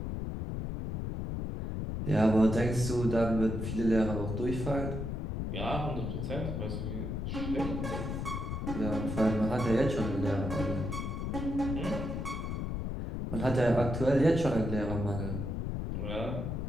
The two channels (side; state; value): left; noise; rumble, 3 dB below the sound